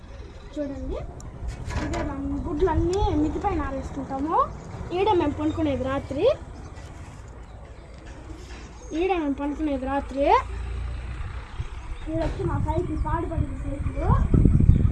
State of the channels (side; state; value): both; identical; correlation 1.00